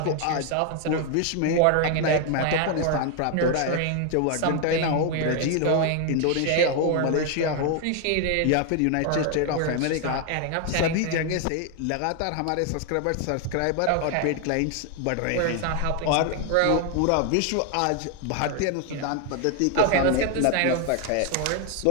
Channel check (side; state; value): both; different; correlation 0.01